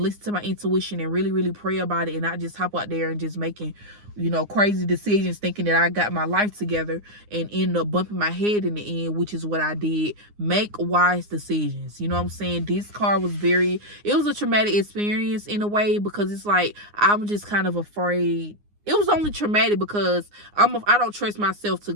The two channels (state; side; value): late; left; 9.7 ms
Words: listen to my intuition, and really, really pray about it, and not just hop out there and just making, you know, crazy decisions thinking that I got my life together and end up bumping my head in the end, which is what I did. Make wise decisions. You know what I'm saying? This car was it was a traumatic experience in a way, because it's like, I'm just kind of afraid. It was only traumatic because I don't trust myself to